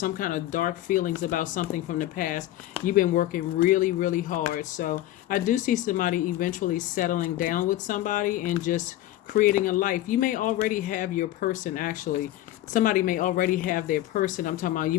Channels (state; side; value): quieter; right; 14.5 dB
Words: kind of dark feelings about something from the past. You've been working really, really hard. So I do see somebody eventually settling down with somebody and just creating a life. You may already have your person, actually. Somebody may already have their person. I'm talking about you